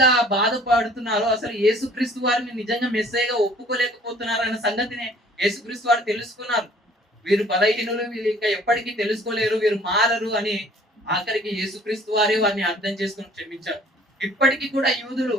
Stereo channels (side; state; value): both; normal; correlation 0.54